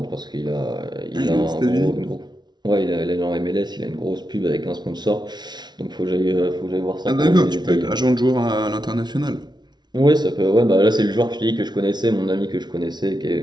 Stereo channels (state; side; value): late; left; 0.20 ms